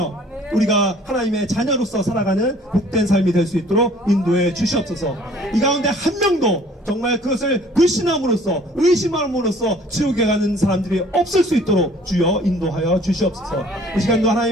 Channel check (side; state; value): both; normal; correlation 0.54